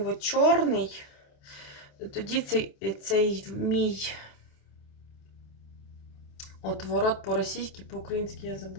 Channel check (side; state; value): right; late; 28 ms